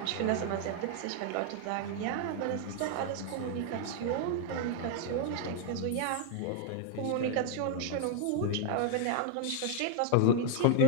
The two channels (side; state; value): both; different; correlation 0.00